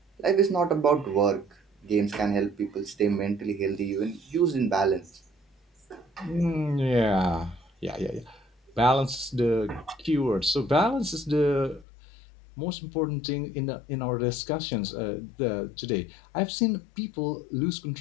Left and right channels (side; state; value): right; drops out; at 11.9 s